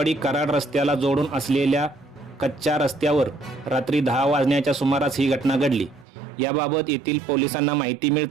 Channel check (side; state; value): left; drops out; at 6.1 s